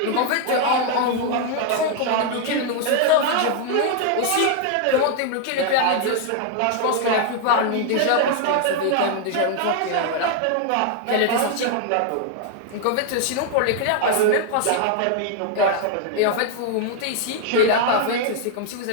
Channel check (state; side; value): different; both; correlation 0.00